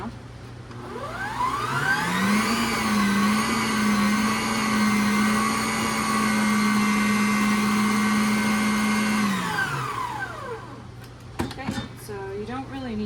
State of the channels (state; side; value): identical; both; correlation 1.00